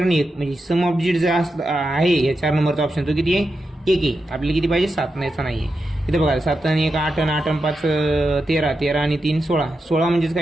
1. म्हणजे सम ऑफ डिजिट जो आहे या 4 नंबरचा ऑप्शन तो किती आहे 1 आहे. आपल्याला किती पाहिजे 7 नाहीचा नाही आहे. इथं बघा 7 आणि 1 8 आणि 8 आणि 5 13, 13 आणि 3 16, 16 म्हणजेच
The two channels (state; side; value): normal; both; correlation 0.88